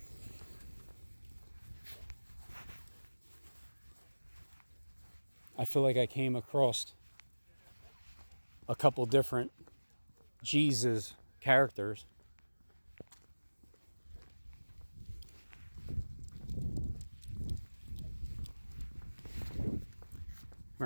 I feel like I came across a couple different Jesus characters. Come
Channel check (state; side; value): inverted; both; correlation -1.00